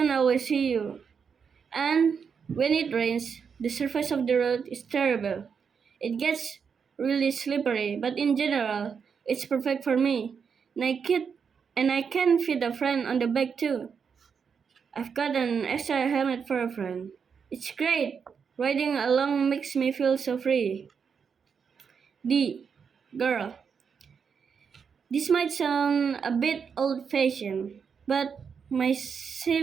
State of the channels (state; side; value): quieter; left; 6.4 dB